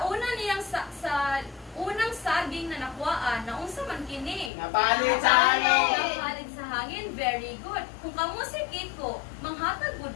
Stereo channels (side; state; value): right; drops out; at 4.5 s